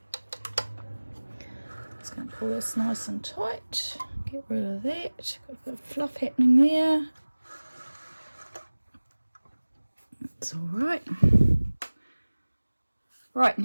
just going to pull this nice and tight, get rid of that, got a bit of fluff happening there. It's all right. Right,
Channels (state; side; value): inverted; both; correlation -1.00